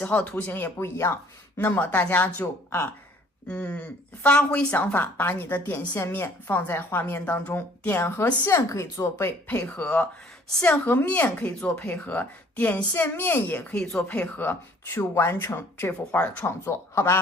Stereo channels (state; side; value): normal; both; correlation 0.57